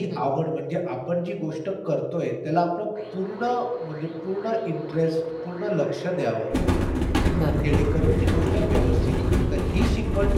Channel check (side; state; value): both; identical; correlation 1.00